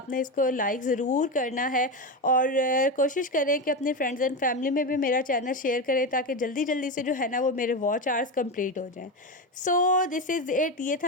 इसको लाइक ज़रूर करना है और कोशिश करें कि अपने फ्रेंड्स एंड फैमिली में भी मेरा चैनल शेयर करें, ताकि जल्दी जल्दी से जो है ना वो मेरे वॉच आवर्स कंप्लीट हो जाएं। सो दिस इज़ इट, ये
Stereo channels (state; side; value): normal; both; correlation 0.16